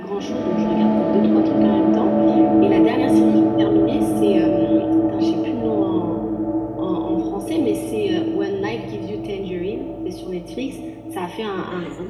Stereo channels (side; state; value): both; identical; correlation 1.00